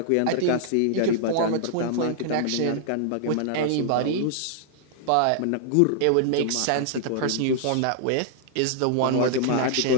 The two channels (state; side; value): different; both; correlation -0.01